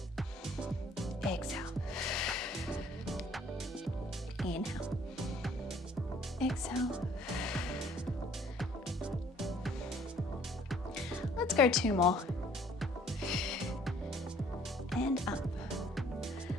Exhale. Inhale. Exhale. Let's go 2 more. And up.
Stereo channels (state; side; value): normal; both; correlation 0.58